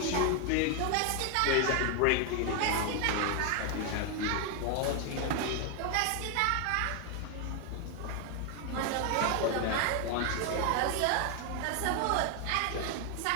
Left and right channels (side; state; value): both; different; correlation 0.01